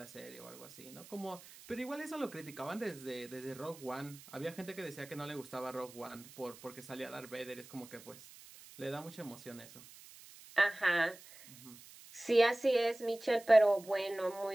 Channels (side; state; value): right; noise; hiss, 19 dB below the sound